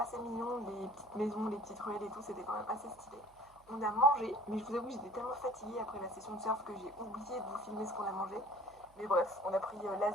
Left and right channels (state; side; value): noise; right; hum, 27 dB below the sound